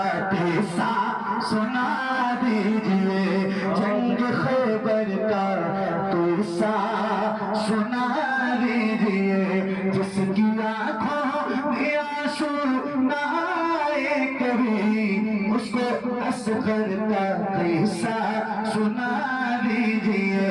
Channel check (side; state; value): both; identical; correlation 1.00